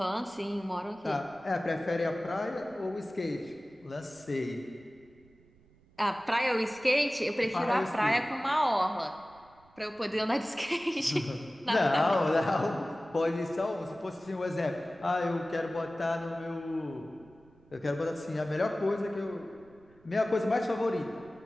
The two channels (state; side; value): noise; right; rumble, 29 dB below the sound